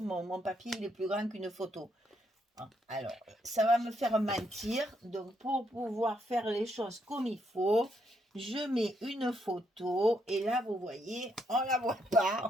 mon papier il est plus grand qu'une photo. Alors, ça va me faire mentir. Donc, pour pouvoir faire les choses comme il faut, je mets une photo. Et là, vous voyez, on ne la voit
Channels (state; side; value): normal; both; correlation 0.76